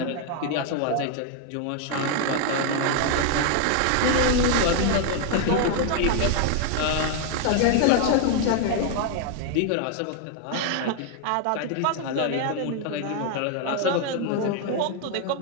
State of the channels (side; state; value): both; different; correlation 0.00